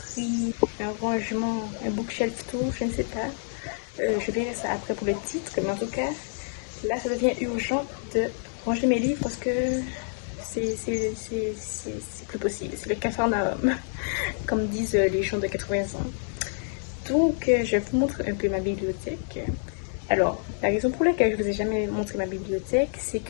un rangement, un bookshelf tour, je ne sais pas. Je verrai ça après pour le titre, mais en tout cas, là ça devient urgent de ranger mes livres parce que c'est plus possible. C'est le capharnaüm, comme disent les gens de 80 ans. Donc, je vous montre un peu ma bibliothèque. Alors, la raison pour laquelle je ne vous ai jamais montré ma bibliothèque, c'est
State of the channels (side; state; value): right; silent; digital silence